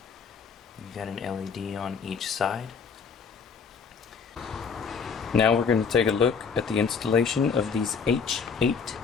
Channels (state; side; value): quieter; right; 5.8 dB